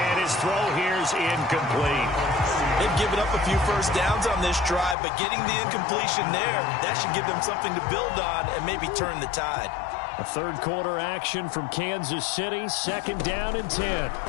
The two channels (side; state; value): right; drops out; at 5.0 s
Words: his throw here's incomplete. They've given up a few first downs on this drive, but getting the incompletion there, that should give them something to build on and maybe turn the tide. A 3rd quarter action from Kansas City, 2nd down and 10.